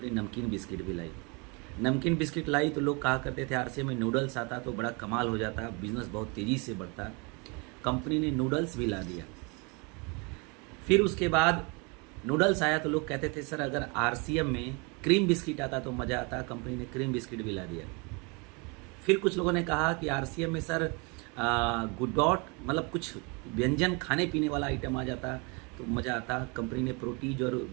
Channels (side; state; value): left; quieter; 30.8 dB